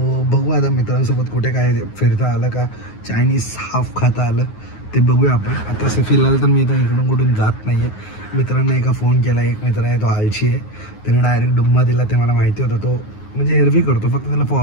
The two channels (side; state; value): right; late; 9.5 ms